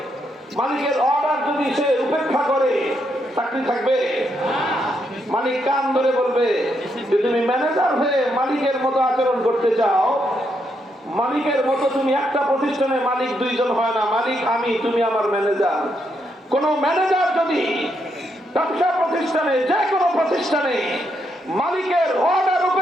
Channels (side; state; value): both; normal; correlation 0.79